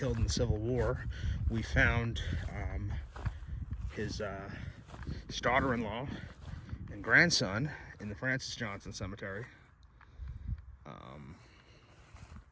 in the Civil War. We found his daughter-in-law and grandson in the Francis Johnson Cemetery.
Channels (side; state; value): both; identical; correlation 1.00